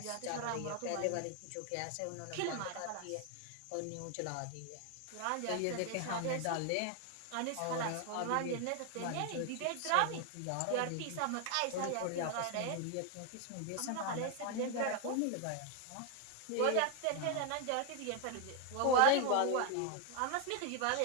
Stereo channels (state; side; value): different; both; correlation 0.00